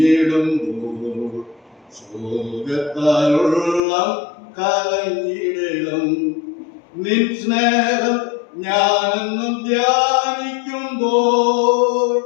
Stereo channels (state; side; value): drops out; right; at 3.8 s